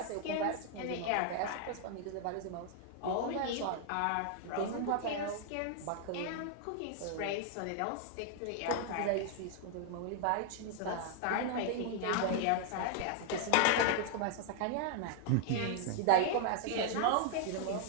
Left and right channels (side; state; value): both; different; correlation 0.00